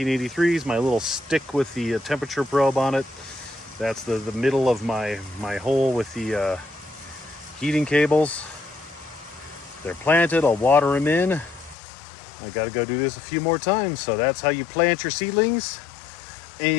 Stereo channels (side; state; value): right; drops out; at 11.8 s